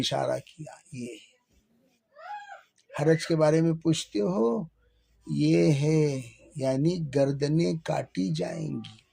کیا، یہ حرج کے بارے میں پوچھتے ہو، یہ ہے، یعنی گردنیں کاٹی جائیں گی۔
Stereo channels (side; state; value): both; identical; correlation 1.00